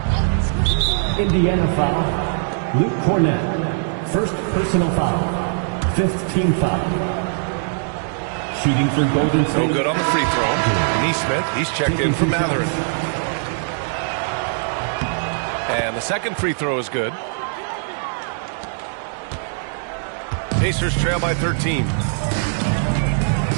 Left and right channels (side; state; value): left; silent; digital silence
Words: Indiana foul. Luke Cornett. First personal foul. Fifth team foul. Shooting for Golden State. No good on the free throw. Neesmith, he's checked in for Mathurin. And the second free throw is good. Pacers trail by 13.